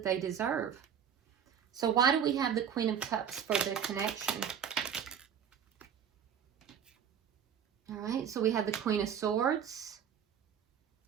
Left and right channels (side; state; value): left; quieter; 8.2 dB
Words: they deserve. So why do we have the Queen of Cups for the connection? All right, so we have the Queen of Swords.